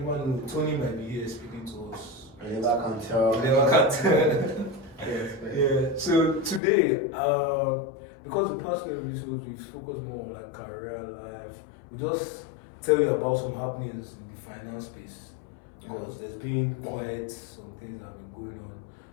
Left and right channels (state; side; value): drops out; right; at 6.6 s